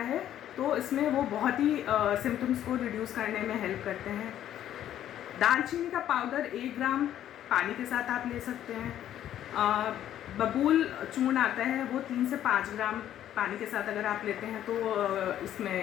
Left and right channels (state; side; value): quieter; right; 11.4 dB